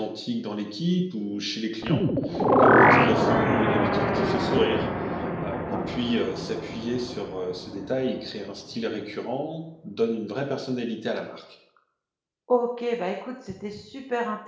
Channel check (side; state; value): both; identical; correlation 1.00